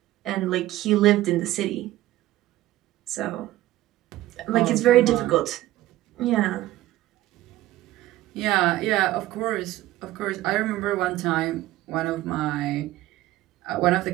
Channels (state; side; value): quieter; left; 15.8 dB